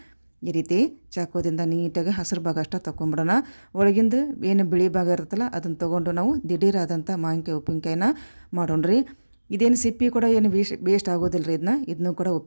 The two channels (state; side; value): inverted; both; correlation -1.00